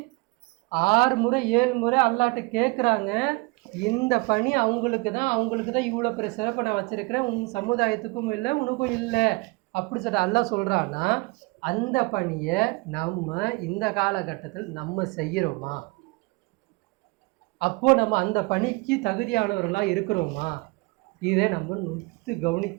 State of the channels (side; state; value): left; quieter; 26.2 dB